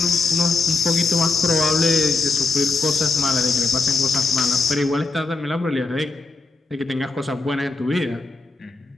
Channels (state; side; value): quieter; right; 3.7 dB